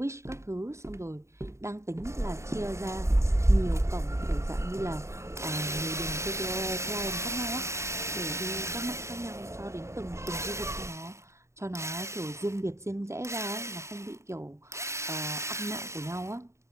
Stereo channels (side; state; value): left; late; 0.14 ms